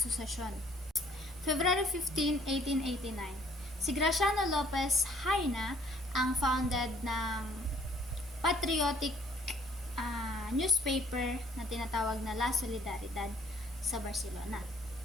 February 15, 1889, si Graciano Lopez Haina ang founded ng patriotic newspaper na tinatawag na La Solidaridad sa Barcelona.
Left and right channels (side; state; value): both; normal; correlation 0.60